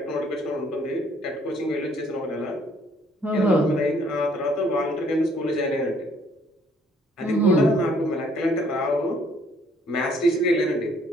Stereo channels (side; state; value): both; normal; correlation 0.63